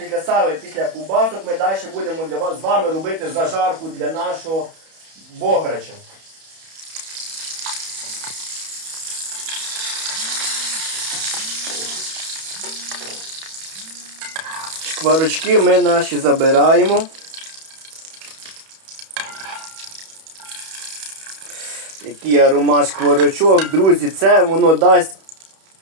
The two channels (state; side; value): late; left; 31 ms